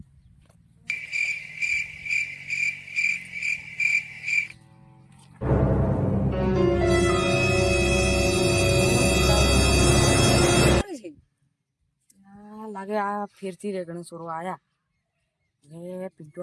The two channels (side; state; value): both; identical; correlation 1.00